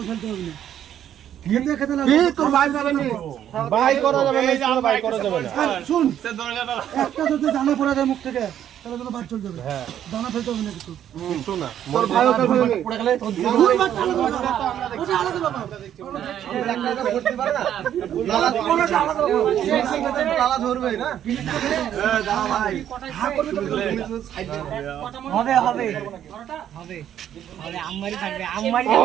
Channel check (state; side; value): quieter; left; 10.4 dB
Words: ফেলতে হবে না খেতে খেতে লাল তোর ভাই যাবে না ভাই করা যাবে না এই ভাই করা যাবে না শুন একটা যদি দানা পড়া যায় মুখ থেকে তাহলে তো বাদ চলে যাবে হ্যাঁ দানা ফেলতে হবে না কিছু একটু না তোর ভাই পড়ে গেলে তোর ওটা আলাদা বাবা একটা করতে পারে না লালা ধরবে না দাও ভাই হবে হবে হবে আরে আম্মারি থাকবে আম্মারি